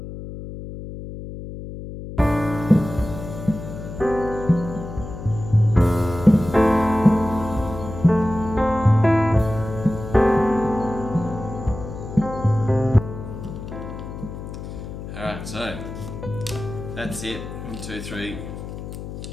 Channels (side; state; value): left; noise; hum, 10 dB below the sound